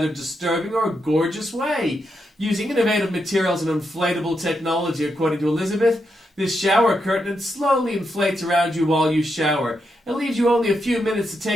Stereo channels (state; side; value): normal; both; correlation 0.83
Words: disturbing or gorgeous way. Using innovative materials and inflatable technology, according to Elizabeth, this shower curtain slowly inflates around you while you shower. It leaves you only a few minutes to